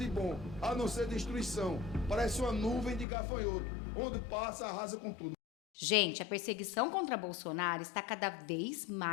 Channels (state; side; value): drops out; right; at 3.1 s